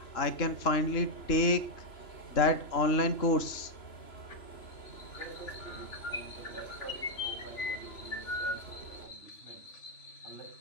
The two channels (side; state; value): right; late; 2.9 ms